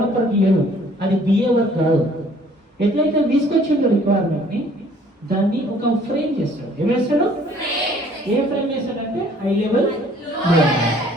లేదు, అది బిఏ వర్క్ కాదు. ఎట్లయితే తీసుకొచ్చిందో రిక్వైర్మెంట్ ని దాన్ని ఒక ఫ్రేమ్ చేస్తాడు. ఏం వేస్తాడు? ఏ ఫ్రేమ్ వేస్తాడంటే హై లెవెల్,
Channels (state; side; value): normal; both; correlation 0.57